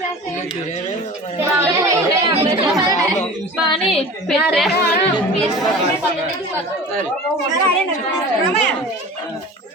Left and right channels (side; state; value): both; normal; correlation 0.38